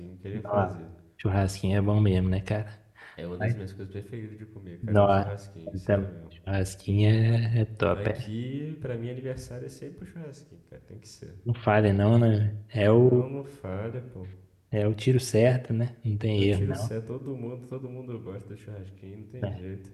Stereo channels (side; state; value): both; identical; correlation 1.00